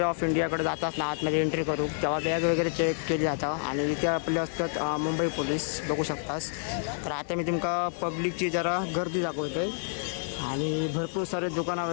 ऑफ इंडियाकडे जातात ना आतमध्ये एंट्री करू तेव्हा बॅग वगैरे चेक केली जातं आणि इथे आपले असतात मुंबई पोलीस बघू शकतास. तर आता मी तुमका पब्लिकची जरा गर्दी दाखवते आणि भरपूर सारे दुकानं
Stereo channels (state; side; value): silent; right; digital silence